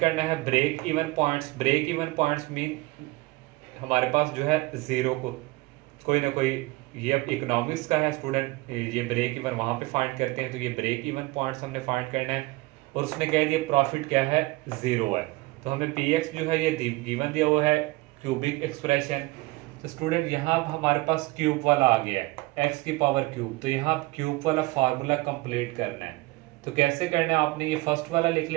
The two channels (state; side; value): quieter; left; 21.8 dB